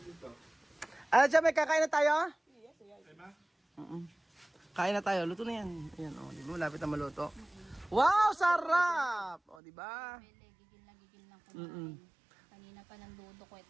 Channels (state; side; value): drops out; left; at 9.6 s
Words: dito. Ano siya, may kakain na tayo? Ay ma? Kain na tayo, luto na yan. Ayan, oh, di ba? Malapit na maluto. Wow, sarap! O, di ba? Bele, gigil lang kumain. Kanina pa ng dudo ko at